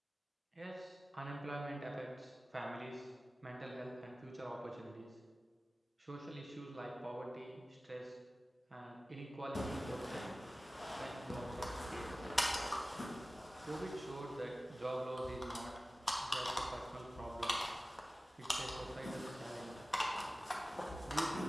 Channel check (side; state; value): both; normal; correlation 0.97